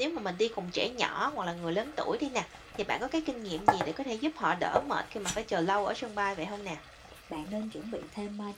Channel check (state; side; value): identical; both; correlation 1.00